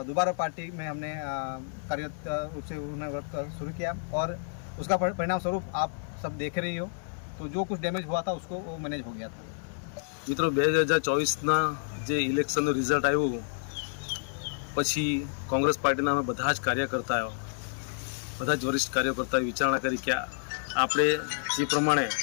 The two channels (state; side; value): silent; right; 58 dB below the other